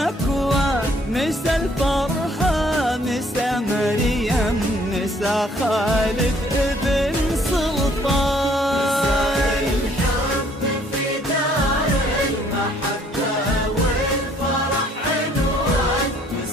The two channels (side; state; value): both; normal; correlation 0.62